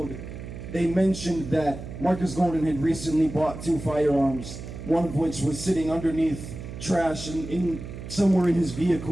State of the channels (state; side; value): noise; right; hum, 10 dB below the sound